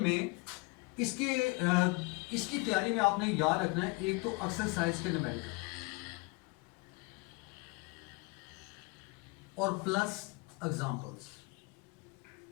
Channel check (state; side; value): quieter; right; 27.5 dB